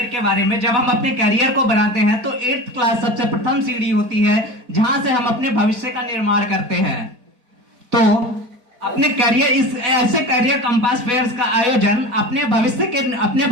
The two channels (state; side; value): late; left; 4.5 ms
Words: के बारे में। जब हम अपने करियर को बनाते हैं तो 8th क्लास सबसे प्रथम सीढ़ी होती है जहां से हम अपने भविष्य का निर्माण करते हैं। तो अपने करियर, इस ऐसे करियर कंपास फेयर्स का आयोजन अपने